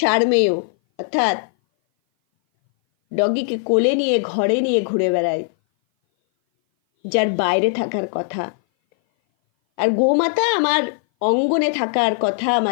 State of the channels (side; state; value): right; silent; 59 dB below the other